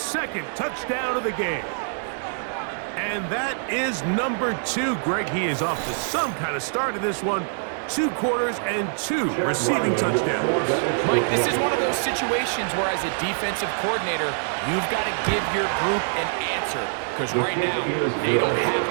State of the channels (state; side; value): silent; left; digital silence